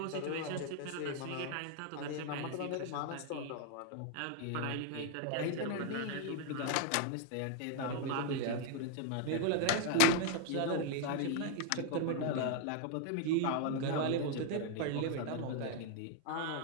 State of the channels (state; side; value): different; both; correlation 0.00